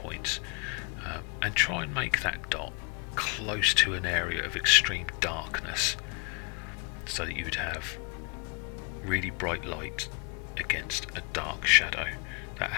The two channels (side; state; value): right; quieter; 35.0 dB